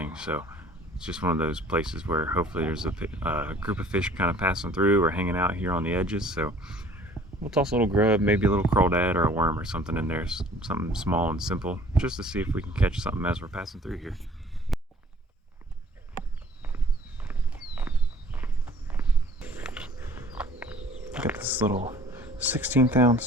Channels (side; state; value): both; normal; correlation 0.52